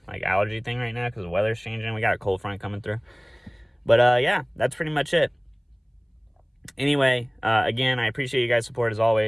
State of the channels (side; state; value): both; identical; correlation 1.00